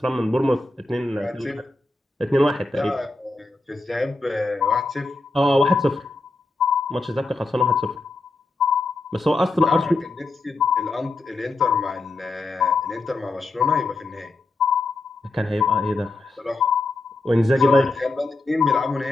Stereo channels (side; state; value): right; quieter; 3.1 dB